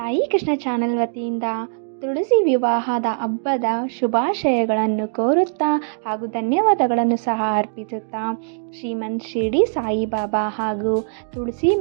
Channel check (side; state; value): left; silent; digital silence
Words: ಕೃಷ್ಣ ಚಾನೆಲ್ ವತಿಯಿಂದ ತುಳಸಿ ವಿವಾಹದ ಹಬ್ಬದ ಶುಭಾಶಯಗಳನ್ನು ಕೋರುತ್ತಾ ಹಾಗೂ ಧನ್ಯವಾದಗಳನ್ನು ಸಹ ಅರ್ಪಿಸುತ್ತಾ ಶ್ರೀಮನ್ ಶಿರಡಿ ಸಾಯಿಬಾಬಾ ಹಾಗೂ ತುಳಸಿ